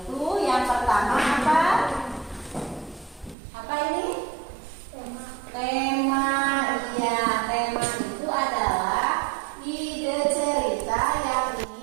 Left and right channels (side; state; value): left; drops out; at 3.4 s